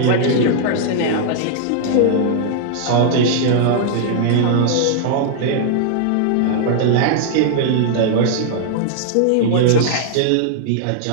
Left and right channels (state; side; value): different; both; correlation -0.01